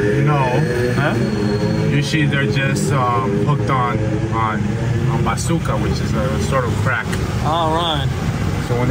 No. Huh? Usually they're just hooked on bazooka, which is a sort of crack. All right. So when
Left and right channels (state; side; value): identical; both; correlation 1.00